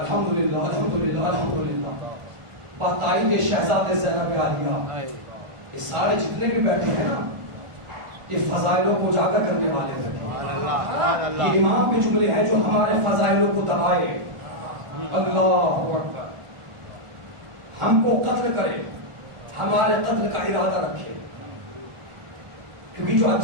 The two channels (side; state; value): left; late; 1.4 ms